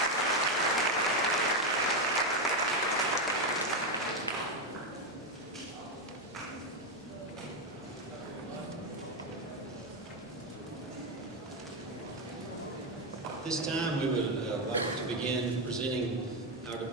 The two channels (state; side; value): normal; both; correlation 0.08